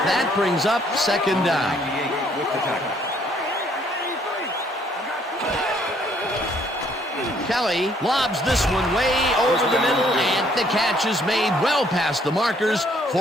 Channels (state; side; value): normal; both; correlation 0.65